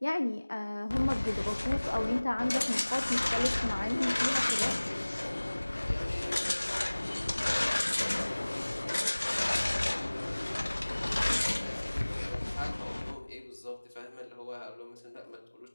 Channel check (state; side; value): inverted; both; correlation -1.00